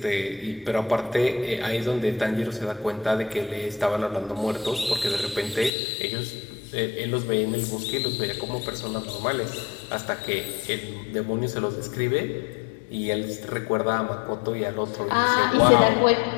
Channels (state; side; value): drops out; right; at 5.7 s